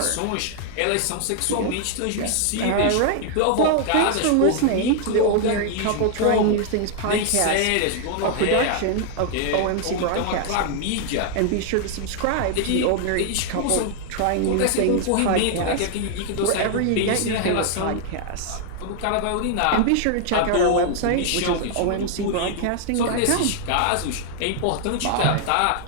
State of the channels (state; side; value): different; both; correlation 0.00